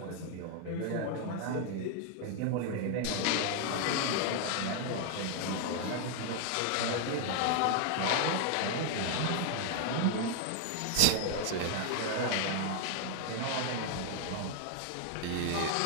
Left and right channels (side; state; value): both; different; correlation 0.00